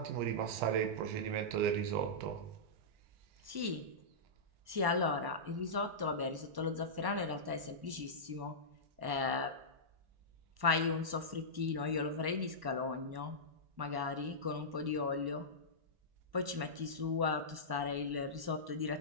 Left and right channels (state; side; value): late; left; 1.1 ms